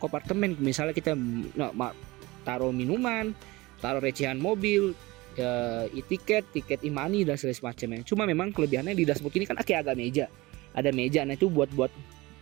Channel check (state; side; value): quieter; left; 21.3 dB